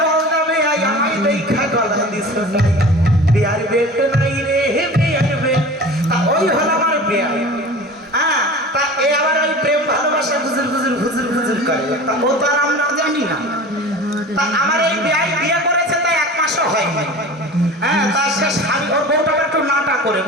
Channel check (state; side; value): normal; both; correlation 0.37